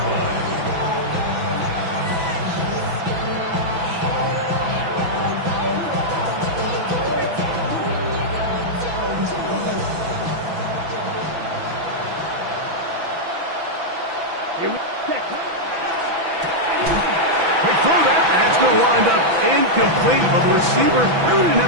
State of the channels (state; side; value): late; left; 6.0 ms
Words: line. Quick throw that. That's going to wind up incomplete, but the receiver really didn't